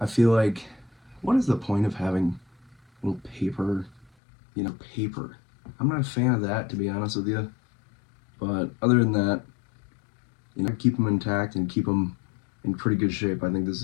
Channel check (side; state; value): right; drops out; at 4.1 s